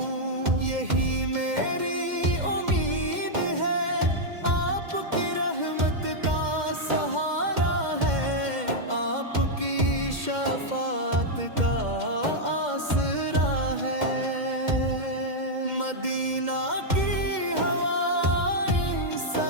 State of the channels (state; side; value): late; left; 2.1 ms